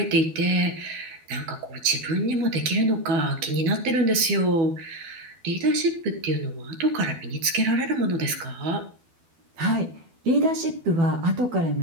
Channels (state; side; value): late; left; 12 ms